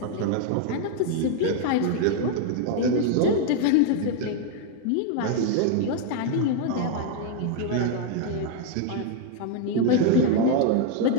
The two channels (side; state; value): both; different; correlation 0.00